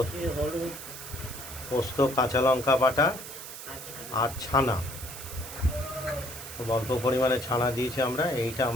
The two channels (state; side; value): noise; right; hiss, 11 dB below the sound